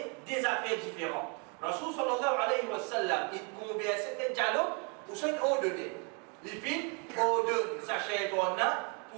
des affaires différentes. Rasul sallallahu alayhi wa sallam, il conversait des dialogues pour ça il ordonnait. Les filles ordonnent sa chair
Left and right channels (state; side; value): quieter; left; 35.3 dB